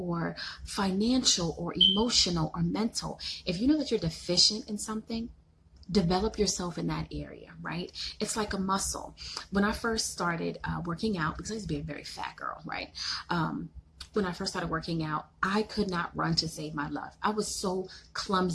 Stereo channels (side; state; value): both; identical; correlation 1.00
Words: financial or emotional or mental, if you know that you're deficient in something, develop yourself in that area, right? It's like a muscle. When I first started working out, because I used to be a very fat girl, right? When I first started working out, I could not run to save my life. I was so